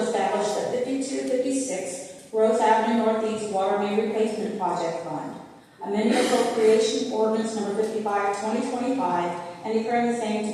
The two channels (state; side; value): identical; both; correlation 1.00